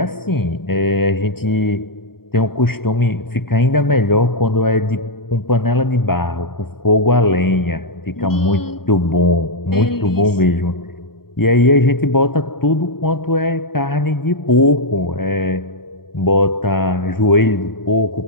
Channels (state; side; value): late; right; 0.95 ms